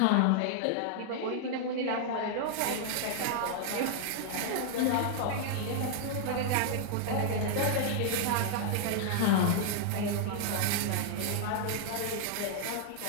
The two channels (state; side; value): different; both; correlation -0.01